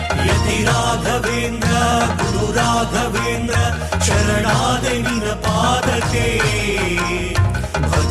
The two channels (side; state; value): both; identical; correlation 1.00